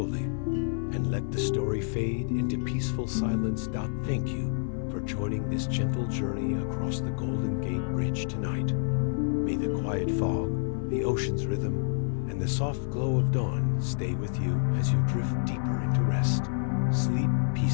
and let the story fade into peaceful silence. Thank you for joining this gentle journey across the Golden Gate Bridge tonight. May the quiet fog, the ocean's rhythm, and the soft glow of dawn stay with you as you drift deeper into rest. Sleep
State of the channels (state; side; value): silent; right; 59 dB below the other